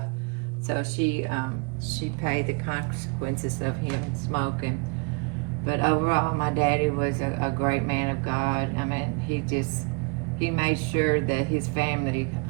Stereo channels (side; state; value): left; quieter; 31.5 dB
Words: So she paid the consequences of him smoking. But overall, my daddy was a great man of God. I mean, he made sure that his family